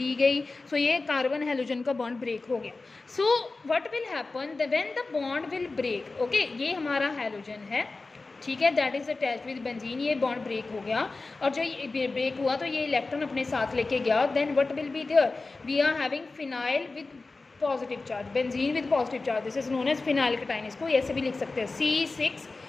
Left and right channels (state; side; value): quieter; right; 3.6 dB